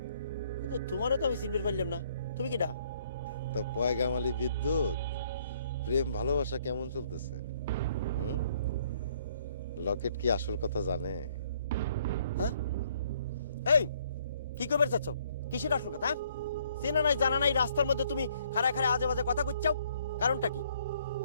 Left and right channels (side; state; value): both; inverted; correlation -0.65